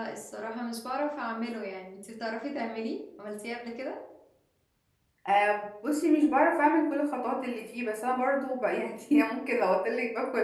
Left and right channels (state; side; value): identical; both; correlation 1.00